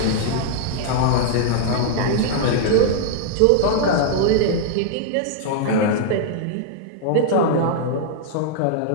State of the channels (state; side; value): different; both; correlation -0.01